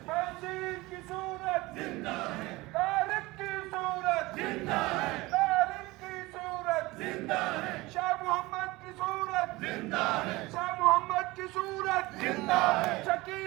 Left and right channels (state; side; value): quieter; left; 21.1 dB